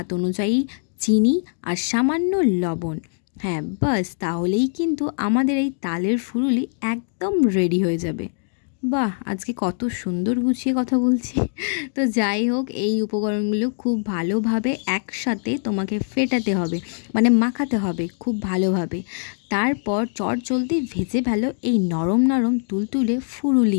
অনুযায়ী চিনি আর সামান্য লবণ। হ্যাঁ, বাস তাহলেই কিন্তু আমাদের এই তালের ফুরুলি একদম রেডি হয়ে যাবে। বাহ, আজকে কত সুন্দর গুছিয়ে কথা বলছি। তো যাই হোক, এই উপকরণগুলো খুব ভালোভাবে একসাথে তোমাকে ফেটাতে হবে, মানে মাখাতে হবে খুব ভালোভাবে। তারপর চটজলদি ভেজে ফেলো এই নরম নরম তুলতুলে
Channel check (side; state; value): right; silent; digital silence